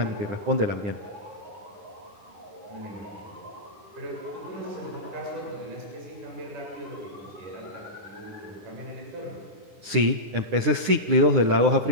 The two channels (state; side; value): late; left; 9.8 ms